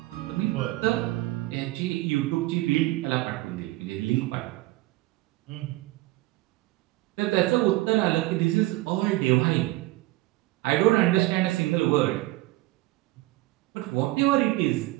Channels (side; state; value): left; quieter; 18.9 dB